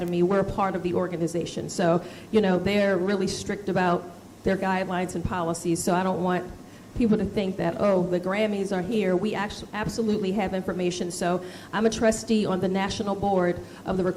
We're a part of the organization. So, they're really strict about their guidelines and policies, so I don't want people to think that, oh, the Grammys are here. We actually absolutely have information. So I'm a trustee on the national board of the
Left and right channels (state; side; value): identical; both; correlation 1.00